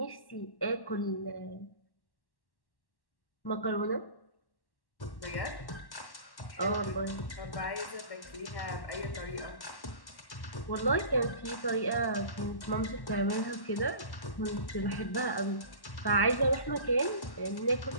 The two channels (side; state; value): right; late; 1.1 ms